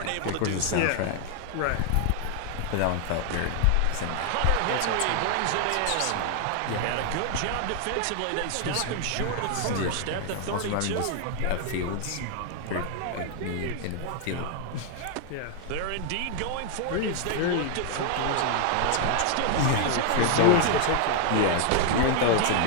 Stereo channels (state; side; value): different; both; correlation 0.00